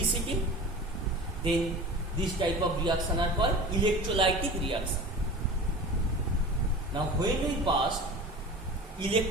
then this type of reaction are called electrolytic reaction. Now when we pass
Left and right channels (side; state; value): both; normal; correlation 0.35